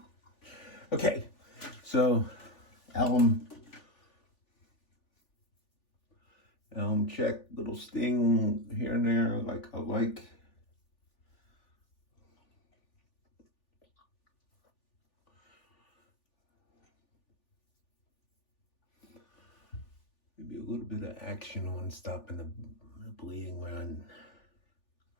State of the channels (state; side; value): late; right; 3.4 ms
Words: Okay, so alum check, little sting here and there, like I like. Maybe a little bit of action on stopping the bleeding where I